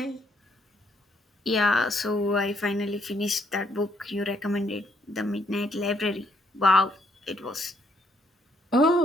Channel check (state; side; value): normal; both; correlation 0.71